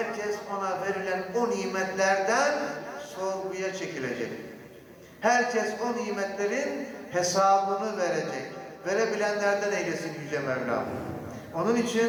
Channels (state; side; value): identical; both; correlation 1.00